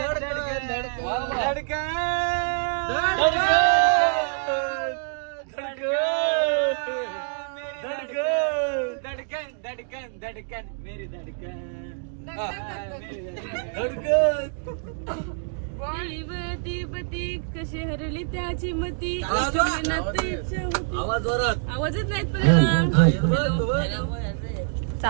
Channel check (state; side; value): silent; left; digital silence